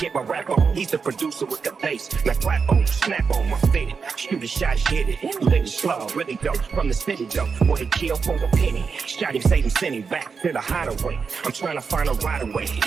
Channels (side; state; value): left; quieter; 5.5 dB